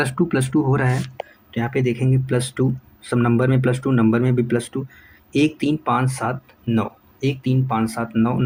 हो रहा है तो यहाँ पे देखेंगे +2, सब नंबर में +2, नंबर में भी +2। 1 3 5 7 9, 1 3 5 7 9,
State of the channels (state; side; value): identical; both; correlation 1.00